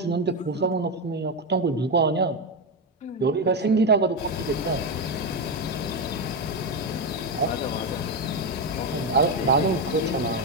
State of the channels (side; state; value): both; normal; correlation 0.10